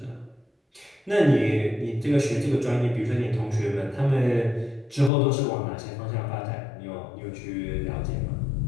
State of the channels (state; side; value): drops out; right; at 5.1 s